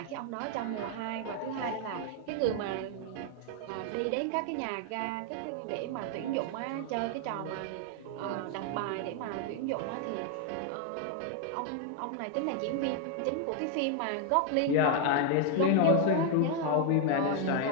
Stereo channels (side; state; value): both; different; correlation 0.00